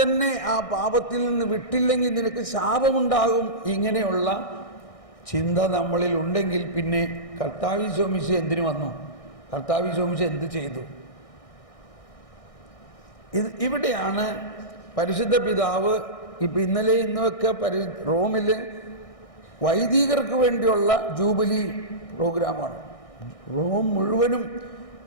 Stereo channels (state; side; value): late; right; 1.6 ms